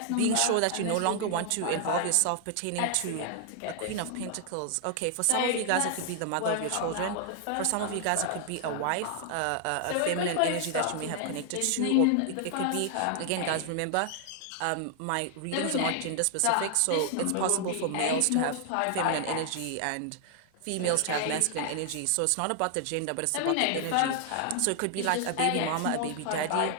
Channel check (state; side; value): different; both; correlation 0.00